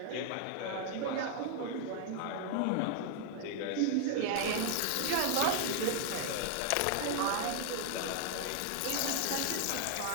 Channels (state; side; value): different; both; correlation 0.00